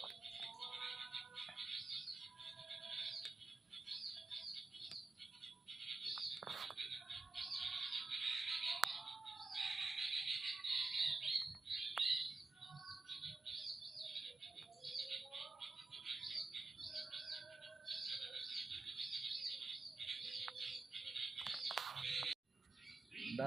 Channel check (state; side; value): quieter; left; 3.4 dB